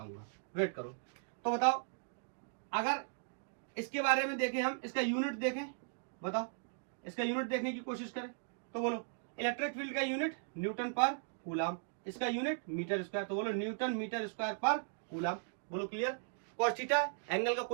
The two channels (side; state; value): left; silent; digital silence